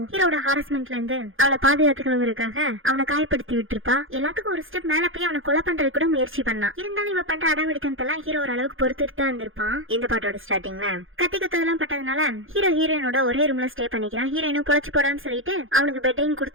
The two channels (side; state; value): left; late; 0.59 ms